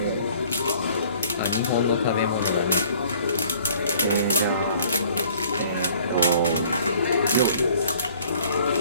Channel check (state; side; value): inverted; both; correlation -0.55